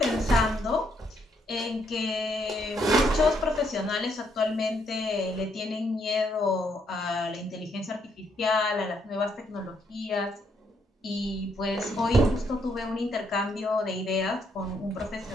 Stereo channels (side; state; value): both; normal; correlation 0.73